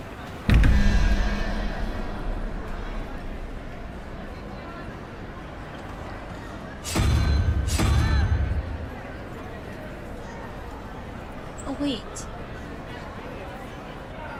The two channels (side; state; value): both; identical; correlation 1.00